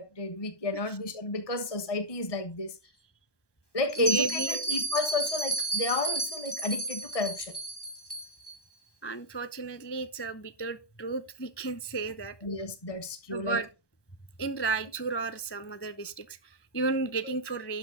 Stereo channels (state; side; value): late; right; 1.2 ms